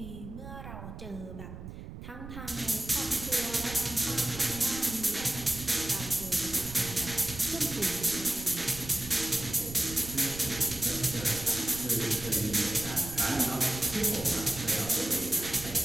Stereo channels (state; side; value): noise; right; rumble, 11 dB below the sound